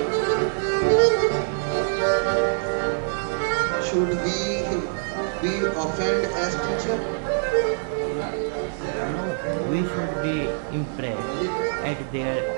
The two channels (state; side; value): silent; left; digital silence